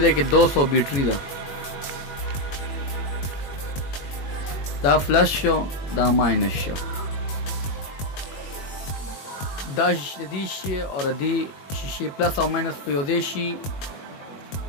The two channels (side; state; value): right; late; 21 ms